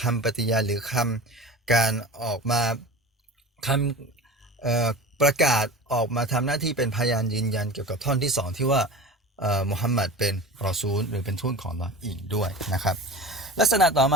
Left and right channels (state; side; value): normal; both; correlation 0.35